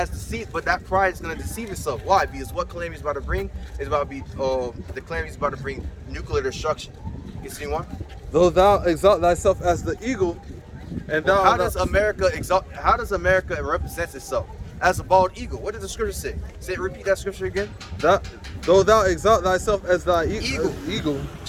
deceit, but that pride is going to deceive itself. Why? Because what calamity is about to bring is about to be the calamity is about to bring nuclear destruction. Continue on. Though thou exalt thyself as the eagle, and thou how does America represent itself? As a bald eagle. What does the scripture say? Repeat that scripture again. Though thou exalt thyself as thy eagle,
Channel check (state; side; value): identical; both; correlation 1.00